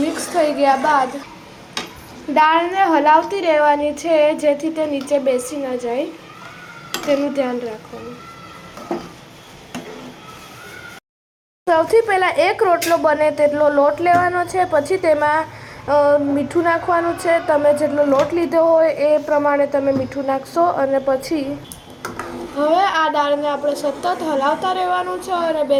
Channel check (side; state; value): both; identical; correlation 1.00